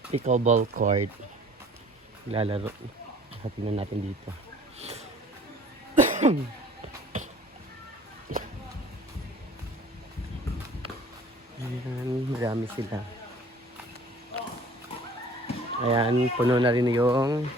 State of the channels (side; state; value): both; normal; correlation 0.51